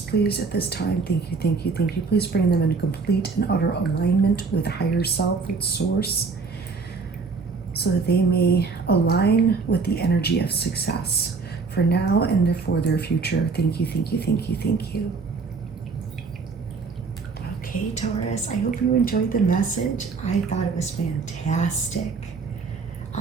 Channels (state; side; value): quieter; left; 4.6 dB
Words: please, at this time. Thank you, thank you, thank you. Please bring them in complete and utter alignment with higher self, with source, so that they may align with the energy of success for now and for their future. Thank you, thank you, thank you, thank you. Okay, Taurus, I hope you enjoyed the message. I thought it was fantastic.